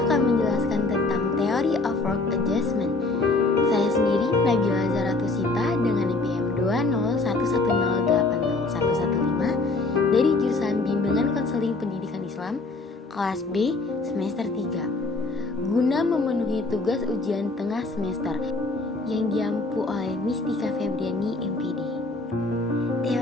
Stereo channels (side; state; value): right; quieter; 3.3 dB